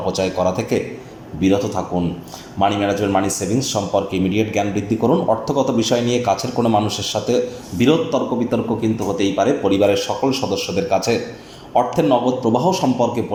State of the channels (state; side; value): identical; both; correlation 1.00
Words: করা থেকে বিরত থাকুন। মানি ম্যানেজমেন্ট, মানি সেভিংস সম্পর্কে ইমিডিয়েট জ্ঞান বৃদ্ধি করুন। অর্থগত বিষয় নিয়ে কাছের কোনো মানুষের সাথে বিরোধ তর্ক বিতর্ক কিন্তু হতেই পারে। পরিবারের সকল সদস্যদের কাছে অর্থের নগদ প্রবাহ সম্পর্কে